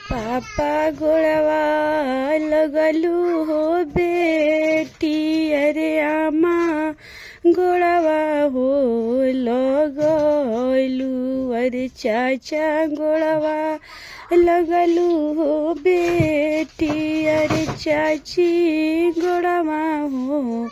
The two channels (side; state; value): both; identical; correlation 1.00